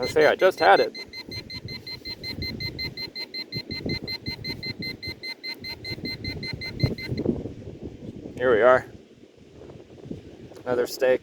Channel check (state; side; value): identical; both; correlation 1.00